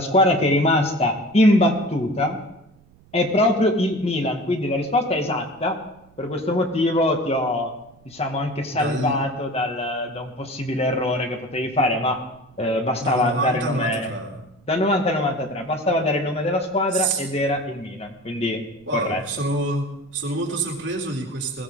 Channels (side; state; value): right; noise; rumble, 28 dB below the sound